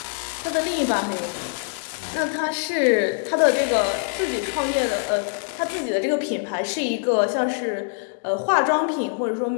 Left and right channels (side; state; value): right; silent; digital silence